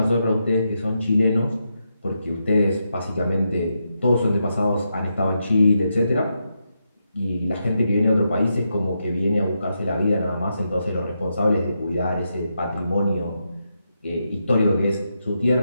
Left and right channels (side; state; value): both; inverted; correlation -0.84